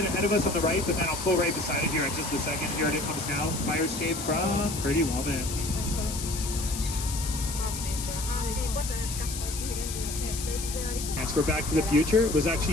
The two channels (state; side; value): noise; left; hiss, 7 dB below the sound